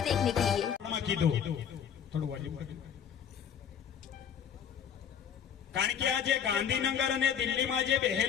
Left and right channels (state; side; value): quieter; right; 8.2 dB